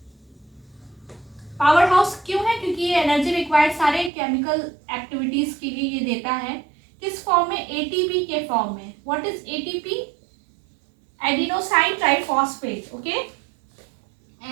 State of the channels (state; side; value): drops out; left; at 4.1 s